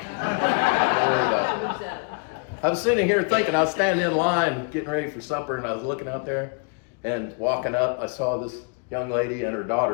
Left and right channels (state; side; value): quieter; right; 36.1 dB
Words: worry about it. I was sitting here thinking, I was standing in line getting ready for supper, and I was looking out there and walking up. I saw this young lady and her